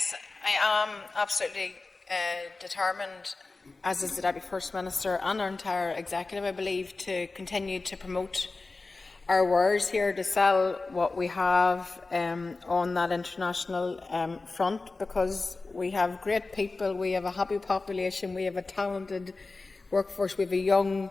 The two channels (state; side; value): quieter; right; 3.6 dB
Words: I am absolutely determined, as is the Deputy First Minister and our entire executive, I believe, to continue to promote our wares here, to sell what we have on that international front, because we have great people, we have a happy population, we have a talented workforce, we have a young,